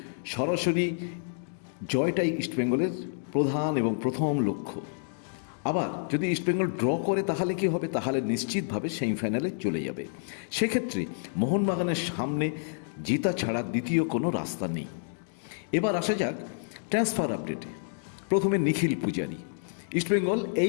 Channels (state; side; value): silent; right; digital silence